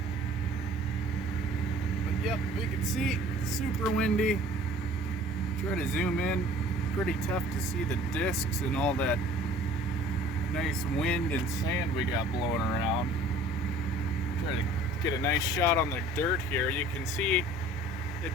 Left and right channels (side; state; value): both; normal; correlation 0.49